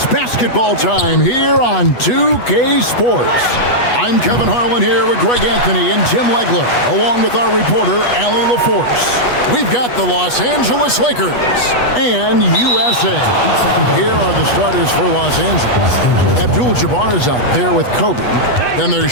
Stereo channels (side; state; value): right; late; 8.2 ms